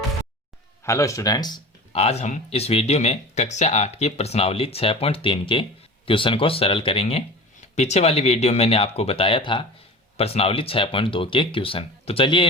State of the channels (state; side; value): normal; both; correlation 0.35